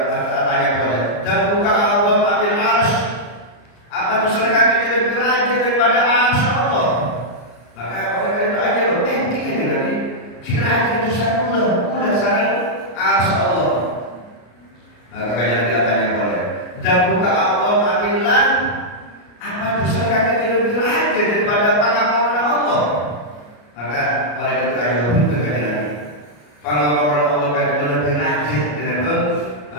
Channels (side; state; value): right; late; 33 ms